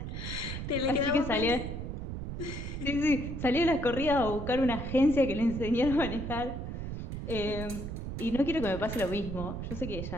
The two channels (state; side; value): noise; right; rumble, 6 dB below the sound